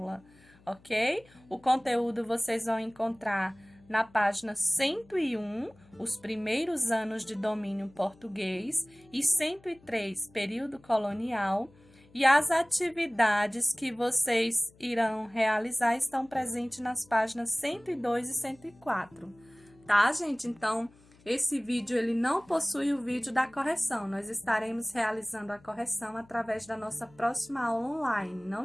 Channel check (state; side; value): noise; left; hum, 28 dB below the sound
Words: ok? O conteúdo vocês vão encontrar na página 101, os primeiros anos de domínio português, e 103, período colonial, e as atividades que vocês irão realizar estão presentes nas páginas 102 e 104, tá, gente? Então, esse vídeo ele não possui o vídeo da correção, nós estaremos realizando a correção através da nossa próxima aula online,